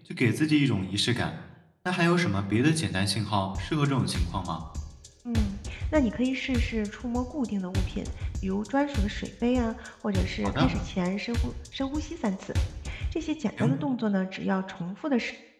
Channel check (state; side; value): identical; both; correlation 1.00